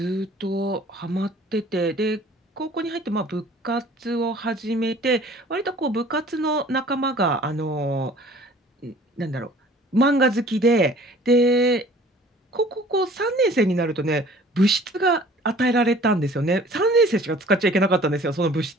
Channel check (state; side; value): normal; both; correlation 0.50